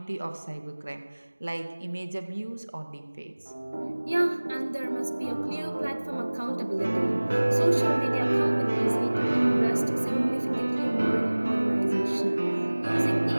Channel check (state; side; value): inverted; both; correlation -1.00